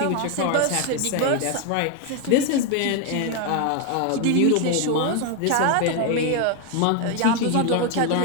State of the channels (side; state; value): both; different; correlation 0.01